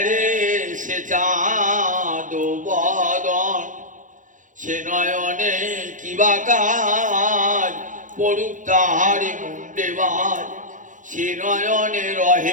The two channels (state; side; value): late; left; 0.37 ms